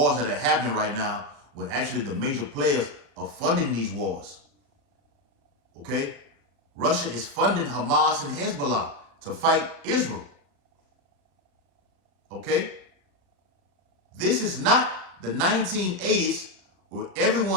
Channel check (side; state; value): left; late; 36 ms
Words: that are happening right now when actually the major players are funding these wars. Okay? Russia is funding Hamas and Hezbollah to fight Israel. Okay? This is not the 1980s where